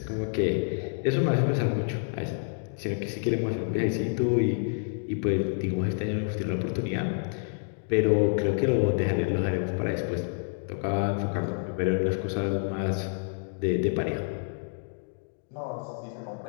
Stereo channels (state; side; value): silent; right; digital silence